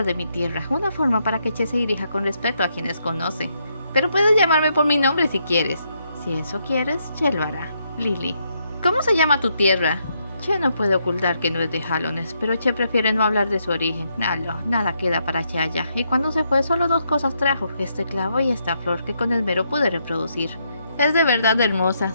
de mi tierra, una forma para que Che se dirija con respeto a quienes conoce. Pero puedes llamarme por mi nombre si quieres. Si eso quieres, Che lo hará. Lily. ¿Cómo se llama tu tierra? Che no puede ocultar que no es de Hallones, pero Che prefiere no hablar de su origen. Nada queda para Che allá, y cuando se fue solo 2 cosas trajo, este clavo y esta flor que con esmero pude reproducir. Es de verdad hermosa,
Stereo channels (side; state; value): both; inverted; correlation -0.77